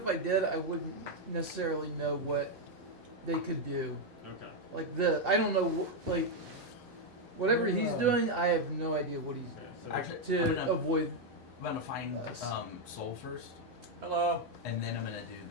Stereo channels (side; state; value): both; normal; correlation 0.01